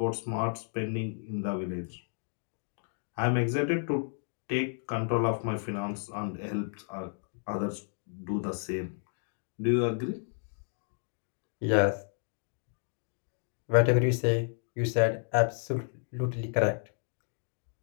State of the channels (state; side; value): silent; right; 56 dB below the other